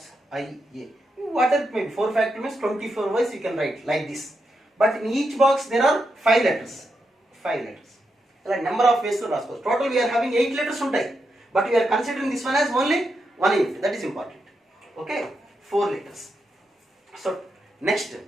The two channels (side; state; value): both; normal; correlation 0.84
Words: I, A. Whatever it may be, 4 factorial means 24 ways you can write like this. But in each box there are 5 letters. Like number of ways to రాసుకోవచ్చు. Total we are having 8 letters ఉంటాయి, but we are considering this one as only 1 unit. That is important. Okay, 4 letters. So next,